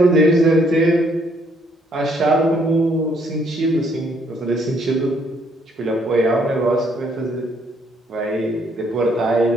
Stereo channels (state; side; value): normal; both; correlation 0.68